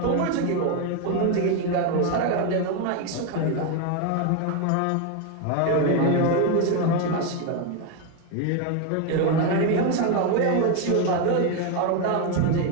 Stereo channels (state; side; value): different; both; correlation 0.01